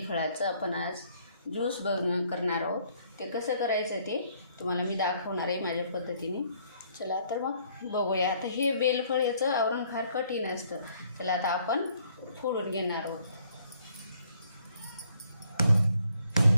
आपण आज ज्यूस करणार आहोत। ते कसं करायचं ते तुम्हाला मी दाखवणार आहे माझ्या पद्धतीने। चला तर मग बघूया। आता हे बेलफळ याचं आवरण फार कठीण असतं, त्याला आता आपण फोडून घेणार आहोत।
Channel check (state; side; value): inverted; both; correlation -0.65